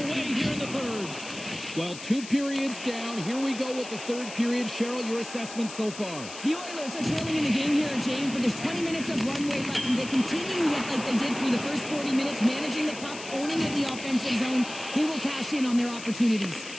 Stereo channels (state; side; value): noise; left; hiss, 12 dB below the sound